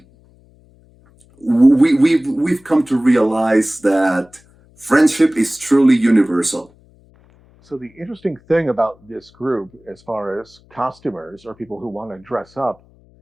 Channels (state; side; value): noise; left; hum, 30 dB below the sound